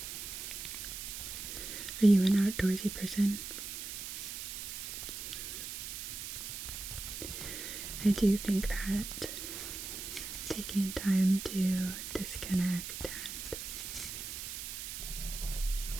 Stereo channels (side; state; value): right; noise; hiss, 7 dB below the sound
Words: Are you an outdoorsy person? I do think that taking time to disconnect and